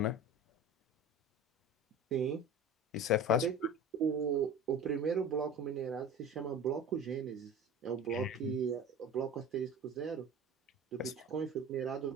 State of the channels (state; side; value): normal; both; correlation 0.36